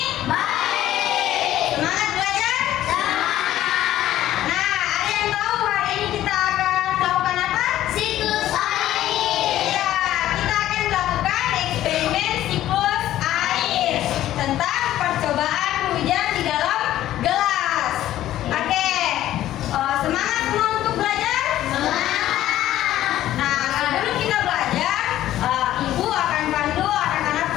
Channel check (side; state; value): right; quieter; 13.4 dB